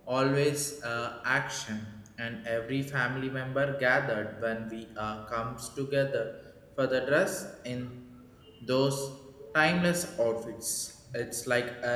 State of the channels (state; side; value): identical; both; correlation 1.00